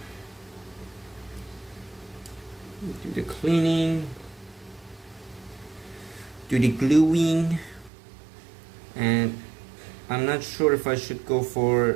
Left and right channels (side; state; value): left; drops out; at 7.9 s